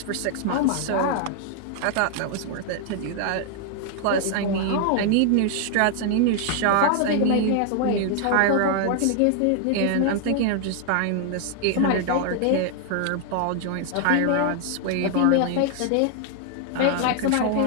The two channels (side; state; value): both; different; correlation 0.00